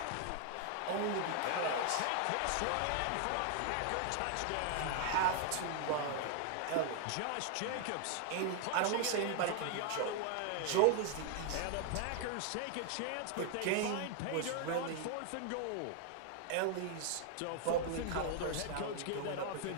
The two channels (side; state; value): both; different; correlation 0.00